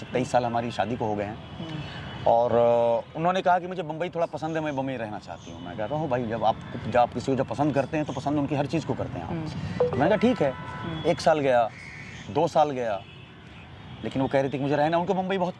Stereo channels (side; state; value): both; identical; correlation 1.00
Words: साल हमारी शादी को हो गए हैं। और उन्होंने कहा कि मुझे बम्बई थोड़ा पसंद है, मैं बम्बई रहना चाहती हूँ। मैं कह रहा हूँ भाई जब आप किसी को जब पसंद करते हैं तो पसंद उनकी हर चीज़ को करते हैं आप। मैंने कहा ठीक है। 1 साल गया, 2 साल गया, लेकिन वो कह रही थी कि मुझे रहना, उनको मुंबई बहुत